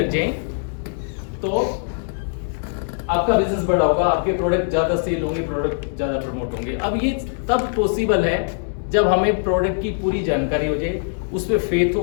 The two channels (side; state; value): right; silent; digital silence